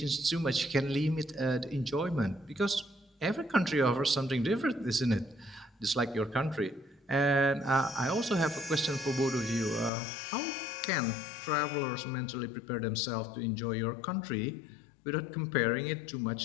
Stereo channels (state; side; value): drops out; right; at 9.9 s